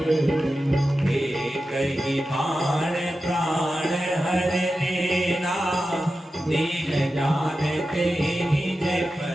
कही बाण प्राण हर लेना, दीन जानते निज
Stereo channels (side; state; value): both; normal; correlation 0.92